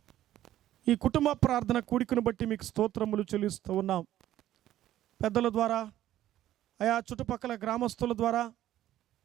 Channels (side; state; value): left; quieter; 13.1 dB